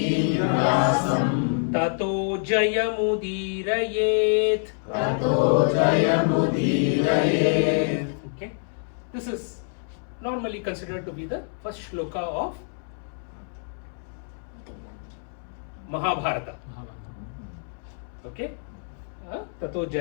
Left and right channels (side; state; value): right; silent; 61 dB below the other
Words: Tato Jayamudirayet. Okay, this is normally considered to be the first shloka of Mahabharata. Okay, Tato